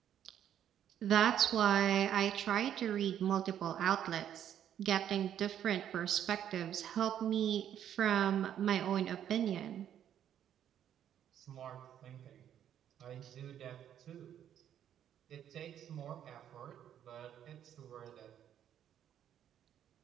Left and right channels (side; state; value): left; quieter; 10.1 dB